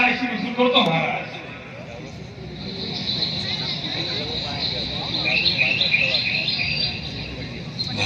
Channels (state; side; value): identical; both; correlation 1.00